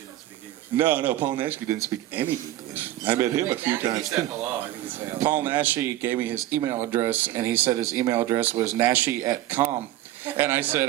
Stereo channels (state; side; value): quieter; left; 14.2 dB